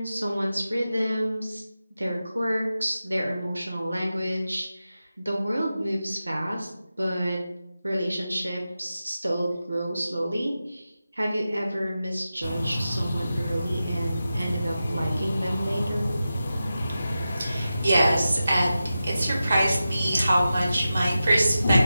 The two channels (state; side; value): inverted; both; correlation -0.92